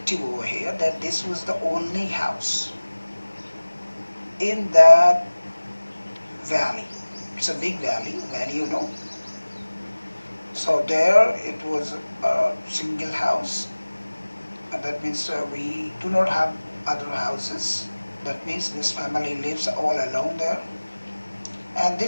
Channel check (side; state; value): both; inverted; correlation -1.00